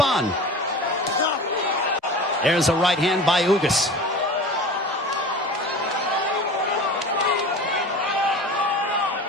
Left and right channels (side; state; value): both; normal; correlation 0.35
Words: There's a right hand by Ugas.